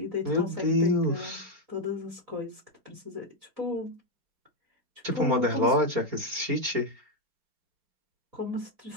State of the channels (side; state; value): left; late; 4.3 ms